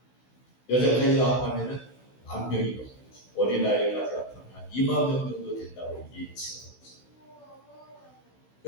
여자까지 합하면은 10,000명이 넘어요. 어린아이까지 합하면 2만 명 정도 된다고 예측하고 있어요.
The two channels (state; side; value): late; right; 16 ms